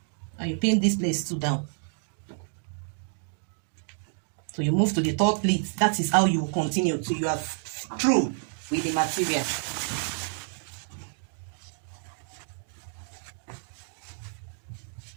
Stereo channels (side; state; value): left; silent; 59 dB below the other